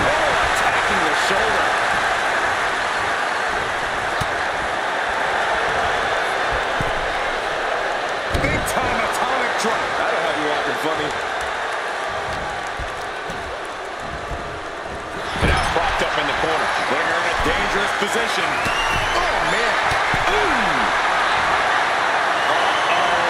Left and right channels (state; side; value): identical; both; correlation 1.00